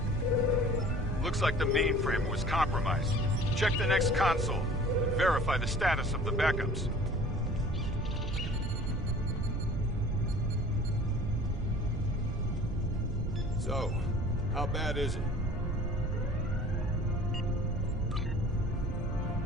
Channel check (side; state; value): right; noise; rumble, 7 dB below the sound